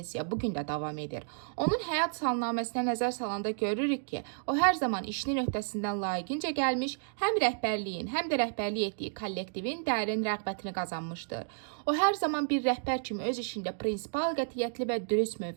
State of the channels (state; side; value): silent; left; digital silence